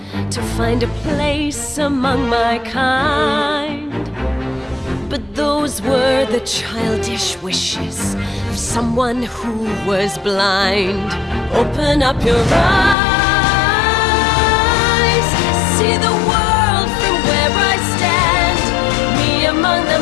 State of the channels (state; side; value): drops out; right; at 13.0 s